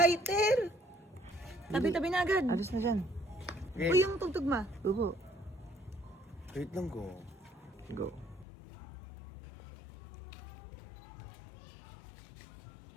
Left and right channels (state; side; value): drops out; right; at 8.5 s